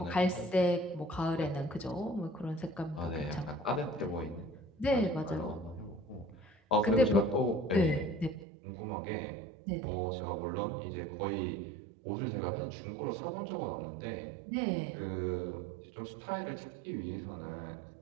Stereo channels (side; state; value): left; drops out; at 8.5 s